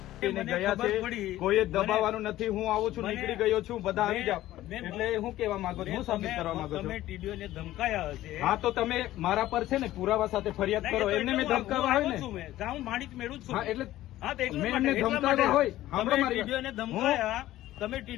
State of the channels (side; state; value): right; quieter; 14.9 dB